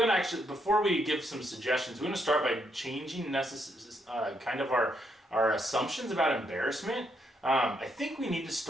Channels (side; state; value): both; normal; correlation 0.76